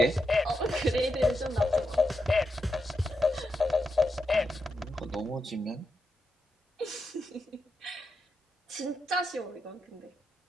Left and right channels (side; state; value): both; normal; correlation 0.85